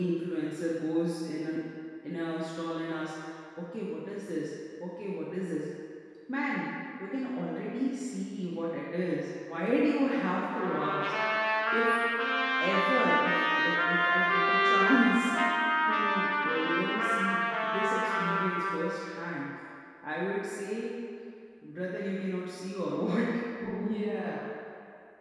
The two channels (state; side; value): identical; both; correlation 1.00